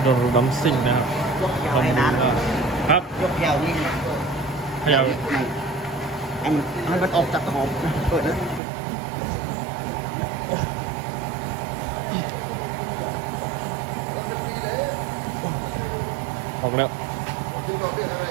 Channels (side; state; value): left; drops out; at 8.6 s